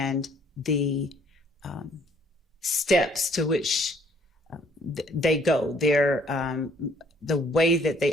the steps to which they go. The way that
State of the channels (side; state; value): both; normal; correlation 0.62